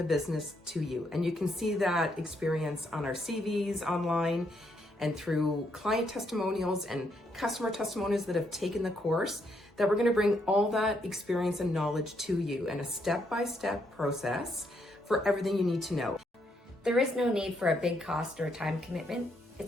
business to you, and you can see that experience on our CVs online and through client testimonials and customer testimonials that have taken the course, that we're going to bring all that experience and knowledge to you in a step-by-step process for everything you need to know. There is no need for a big cost or a time commitment.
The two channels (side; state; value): both; normal; correlation 0.75